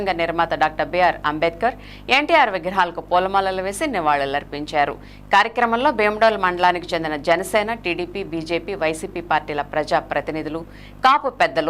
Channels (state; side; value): identical; both; correlation 1.00